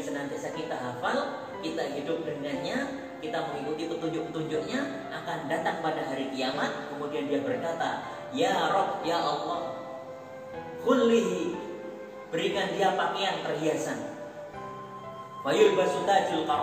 kita hafal, kita hidup dengannya, kita mengikuti petunjuk-petunjuknya, akan datang pada hari kiamat. Kemudian dia berkata, ya Rabb, ya Allah, khullihi, berikan dia pakaian perhiasan. Fayul basutajul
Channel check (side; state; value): both; identical; correlation 1.00